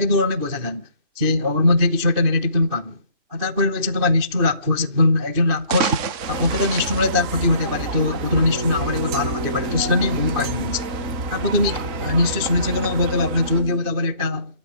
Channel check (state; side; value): late; left; 2.6 ms